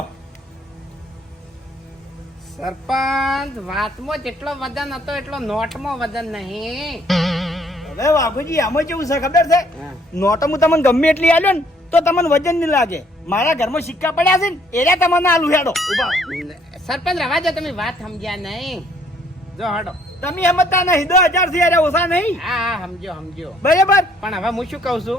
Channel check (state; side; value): normal; both; correlation 0.64